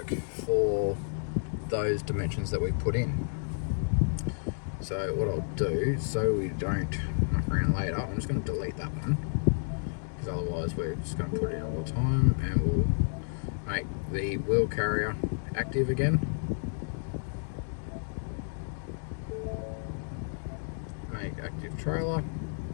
for those dimensions that we put in. So what I'll do, so we don't muck around later, I'm just going to delete that one, because otherwise we're just going to put it in all the time, and we'll make the wheel carrier active again. Make active trailer.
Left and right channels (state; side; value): silent; right; digital silence